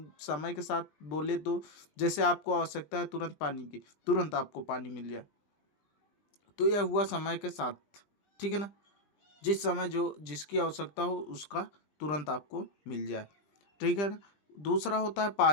समय के साथ बोले तो जैसे आपको आवश्यकता है तुरंत पानी की, तुरंत आपको पानी मिल जाए, तो यह हुआ समय के साथ। ठीक है ना? जिस समय जो जिसकी आवश्यकता हो उसका तुरंत आपको मिल जाए। ठीक है ना? दूसरा होता है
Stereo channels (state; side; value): late; right; 20 ms